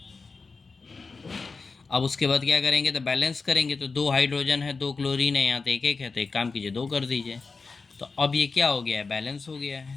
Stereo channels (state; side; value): quieter; right; 4.4 dB